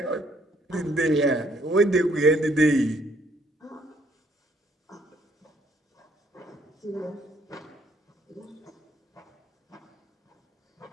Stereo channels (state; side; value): normal; both; correlation 0.66